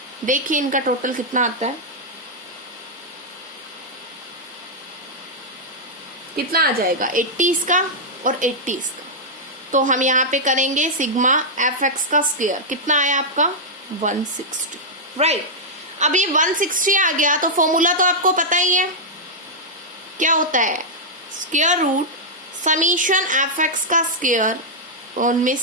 देखिए इनका टोटल कितना आता है, कितना आ जाएगा 80 इसका और 80 इसका। तो हम यहाँ पे करेंगे सिग्मा एफ एक्स का स्क्वायर, कितना आया आपका 160, राइट। अब ये 160 आ गया तो फॉर्मूला तो आपको पता ही है, क्या होता है, square root summation F X का स्क्वायर उनमें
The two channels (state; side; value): normal; both; correlation -0.06